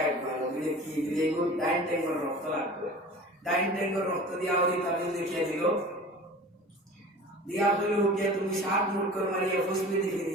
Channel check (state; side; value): normal; both; correlation 0.40